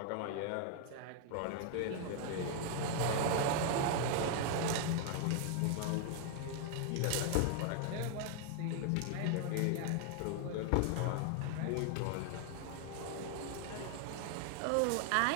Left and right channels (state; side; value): different; both; correlation 0.00